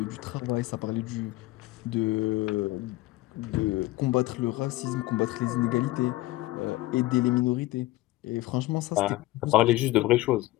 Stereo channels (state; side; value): quieter; right; 18.5 dB